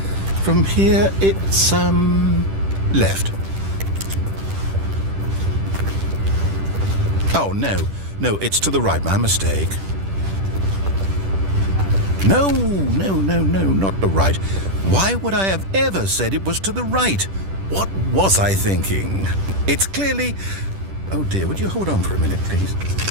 from here it's, left. Oh, no, it's to the right, my mistake. No, not the right. Why would I have ever said it was to the right? What was I thinking? It's clearly... Oh dear, would you hold on for a minute, please?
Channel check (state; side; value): late; left; 10 ms